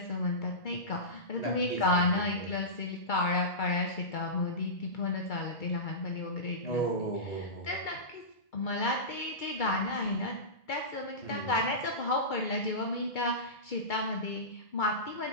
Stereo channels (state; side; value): late; right; 2.3 ms